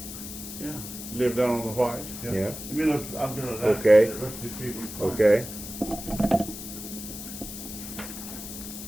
Yeah, live down on the White. Yeah. Let me look, I'm gonna. Okay. Let's just see if we can find Okay.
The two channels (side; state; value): left; noise; hiss, 10 dB below the sound